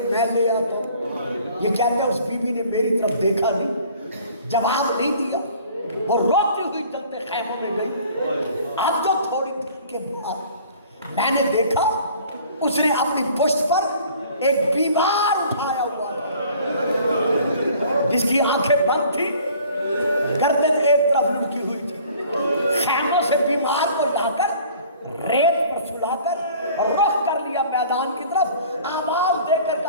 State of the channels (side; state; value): both; inverted; correlation -0.51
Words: میں لے آتا ہوں۔ یہ کہتے ہیں اس بی بی نے میری طرف دیکھا نہیں، جواب نہیں دیا، وہ روتی ہوئی چلتے خیموں میں گئی۔ اب تو تھوڑی دیر کے بعد میں نے دیکھا اس نے اپنی پشت پر ایک بیمار اٹھایا ہوا جس کی آنکھیں بند تھی، گردن ایک طرف لٹکی ہوئی تھی، خیموں سے بیمار کو لا کر ریت پر سلا کر رخ کر لیا میدان کی طرف، آواز دے کر